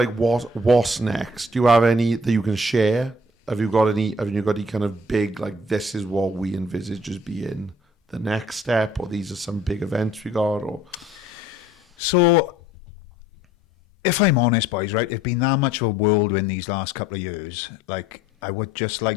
what's next, do you have any that you can share? Have you got any kind of big, like, this is what we envisage as being the next step, or these are some big events we got, or... So, if I'm honest, boys, right, it's been that much of a whirlwind these last couple of years. Like, I would just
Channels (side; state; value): both; normal; correlation 0.56